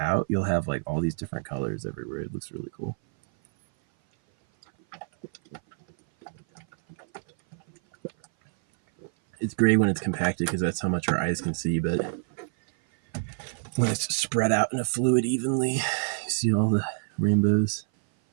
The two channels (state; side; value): silent; left; 57 dB below the other